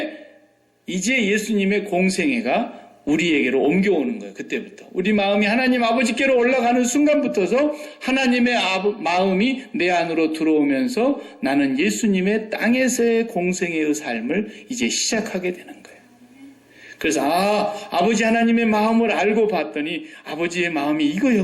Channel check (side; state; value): both; identical; correlation 1.00